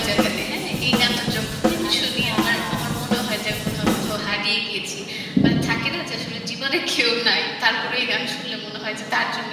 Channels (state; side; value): identical; both; correlation 1.00